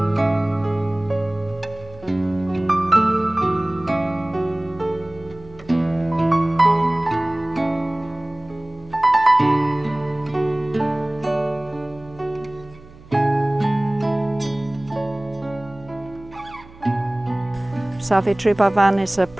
Zacbrisson is a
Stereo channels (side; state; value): right; noise; hum, 22 dB below the sound